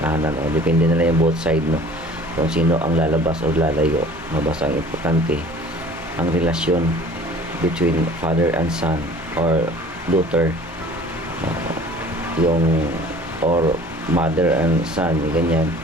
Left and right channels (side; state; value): both; normal; correlation 0.47